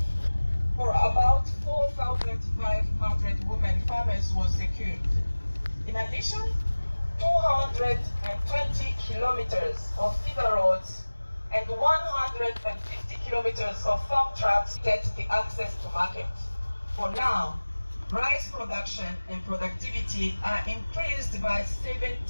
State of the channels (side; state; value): both; inverted; correlation -1.00